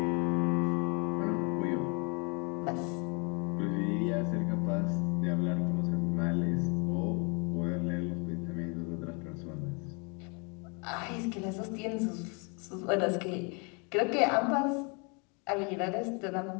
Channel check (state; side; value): quieter; right; 33.6 dB